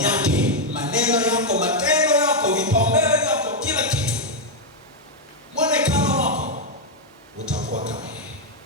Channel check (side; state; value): both; normal; correlation 0.01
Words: yake, maneno yako, matendo yako, vipaumbele vyako, kila kitu, mwonekano wako utakuwa kama yeye.